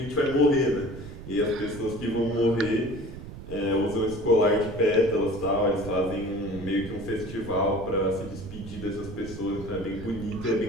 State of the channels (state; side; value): noise; right; rumble, 12 dB below the sound